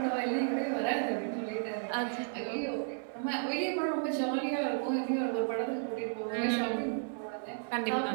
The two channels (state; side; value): silent; left; digital silence